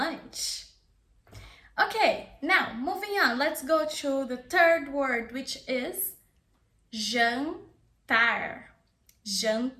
Okay, now moving on. Let's go to the third word, which is jantar.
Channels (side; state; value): both; identical; correlation 1.00